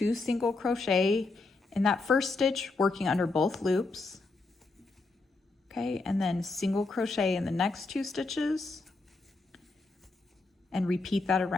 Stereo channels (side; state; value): right; quieter; 3.5 dB